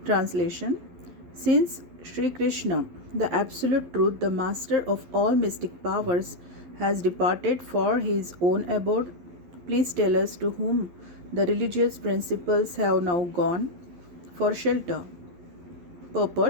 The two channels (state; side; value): late; left; 11 ms